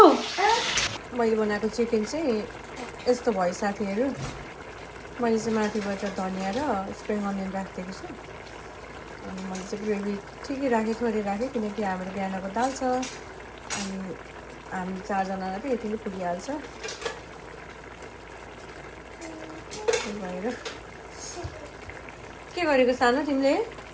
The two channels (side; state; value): both; identical; correlation 1.00